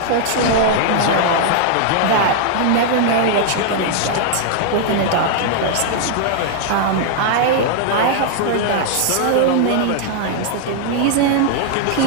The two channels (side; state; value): both; different; correlation -0.01